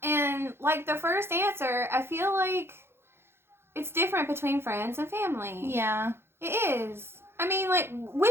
And like the first answer, I feel like it's different between friends and family. Yeah. It is. I mean, like,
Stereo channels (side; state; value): left; late; 0.12 ms